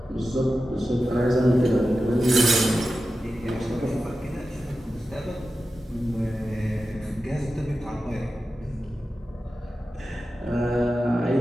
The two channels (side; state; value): both; normal; correlation 0.92